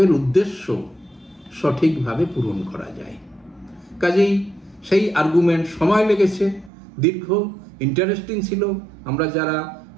উদ্দেশ্য সঠিকভাবে পূরণ করা যায়। কাজেই সেই আর্গুমেন্ট সময় লেগেছে, দীর্ঘ, ইন্টারেস্টিং ছিল। আমরা যারা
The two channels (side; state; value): left; drops out; at 6.7 s